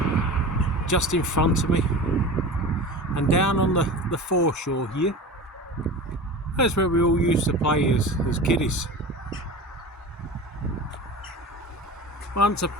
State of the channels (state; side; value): normal; both; correlation 0.33